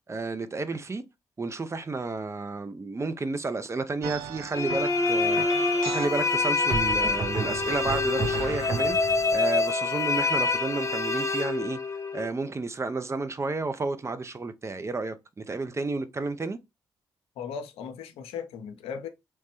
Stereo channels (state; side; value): normal; both; correlation 0.43